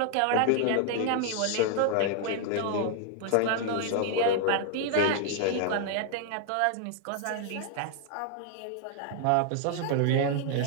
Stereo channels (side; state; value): both; different; correlation 0.00